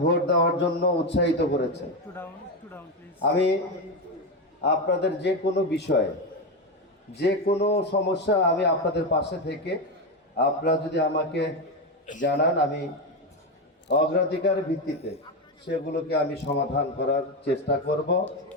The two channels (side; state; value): both; normal; correlation 0.12